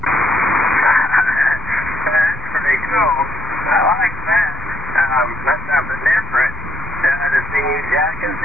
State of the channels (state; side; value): noise; right; rumble, 12 dB below the sound